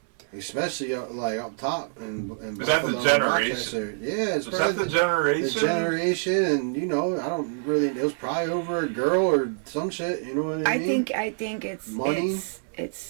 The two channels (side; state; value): left; silent; digital silence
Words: Especially like up top in Buffalo, that the generation? Yeah, it's probably the generation. The generation, and I don't really. It was probably over a girl or some shit. You know what I mean? I think it's money.